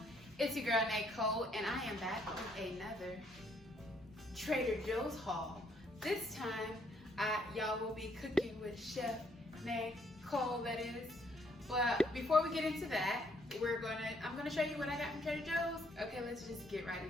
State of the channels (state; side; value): normal; both; correlation 0.69